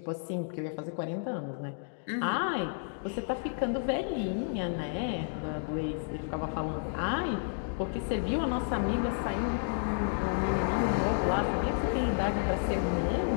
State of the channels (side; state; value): right; silent; digital silence